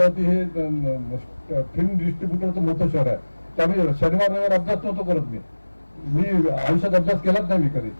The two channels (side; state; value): both; inverted; correlation -1.00